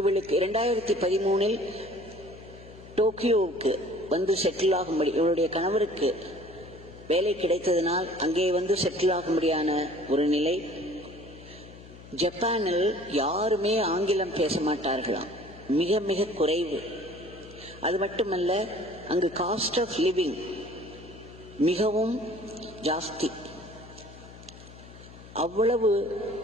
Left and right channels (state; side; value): noise; left; hum, 18 dB below the sound